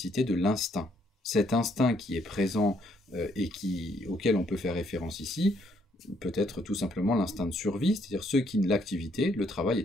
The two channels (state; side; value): normal; both; correlation 0.70